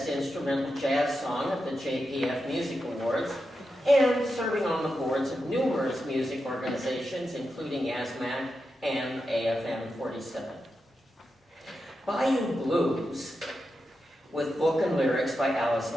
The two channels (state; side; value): normal; both; correlation 0.88